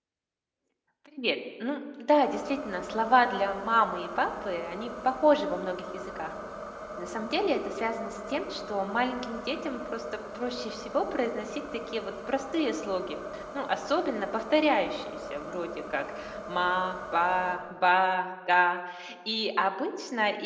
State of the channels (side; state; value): both; identical; correlation 1.00